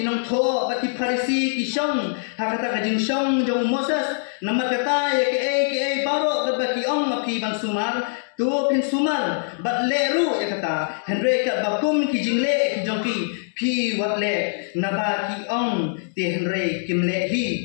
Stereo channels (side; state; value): right; silent; digital silence